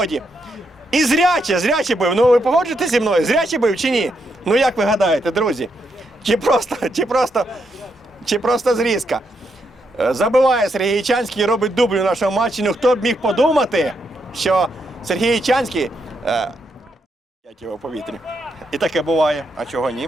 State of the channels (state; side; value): normal; both; correlation 0.80